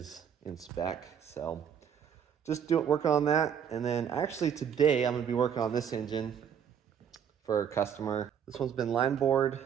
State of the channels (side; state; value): left; quieter; 8.1 dB